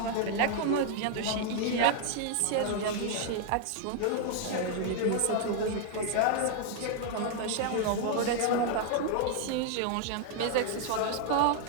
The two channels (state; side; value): different; both; correlation 0.00